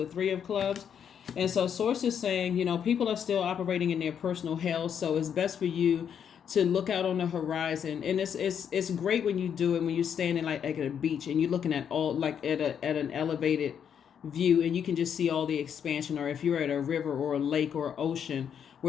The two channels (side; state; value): right; quieter; 8.1 dB